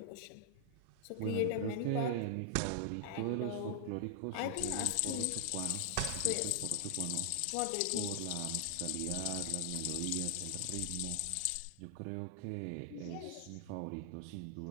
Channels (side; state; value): both; different; correlation -0.01